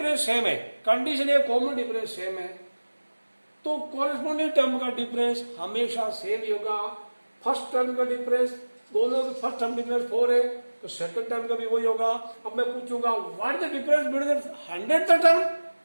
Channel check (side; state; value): both; inverted; correlation -1.00